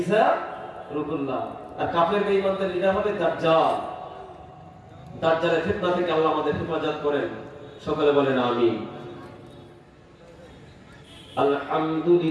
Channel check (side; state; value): both; identical; correlation 1.00